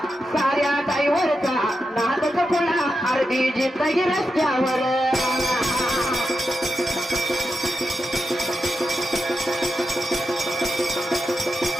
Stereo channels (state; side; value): normal; both; correlation 0.88